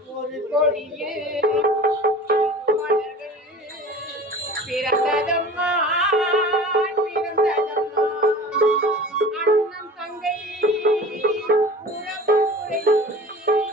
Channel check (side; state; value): both; normal; correlation 0.40